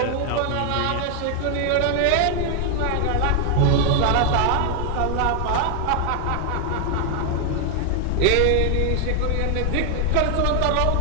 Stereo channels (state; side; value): different; both; correlation 0.00